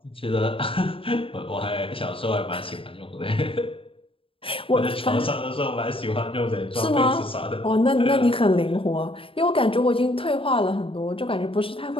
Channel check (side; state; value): right; late; 0.26 ms